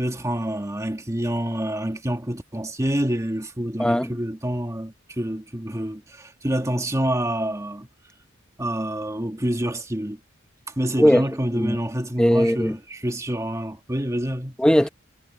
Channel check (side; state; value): both; normal; correlation 0.93